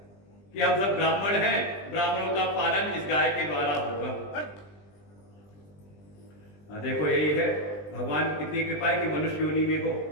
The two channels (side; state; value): right; late; 20 ms